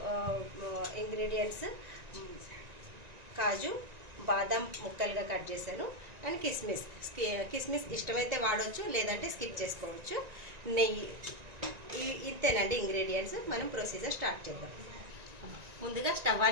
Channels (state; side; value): late; left; 1.9 ms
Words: ఇంగ్రీడియంట్స్ కాజు, బాదం ముక్కలుగా కట్ చేశాను, అండ్ కిస్మిస్. కిస్మిస్ ఇష్టమైతే వాడవచ్చు, లేదంటే స్కిప్ చేసుకోవచ్చు. నెయ్యి, ఇంతేనండి ఇంగ్రీడియంట్స్. మనం ప్రొసీజర్ స్టార్ట్ చేద్దాం. ముందుగా స్టవ్